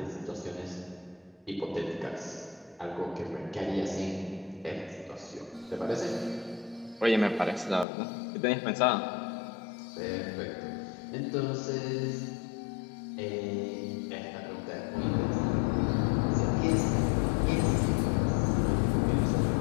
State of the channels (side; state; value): right; drops out; at 7.9 s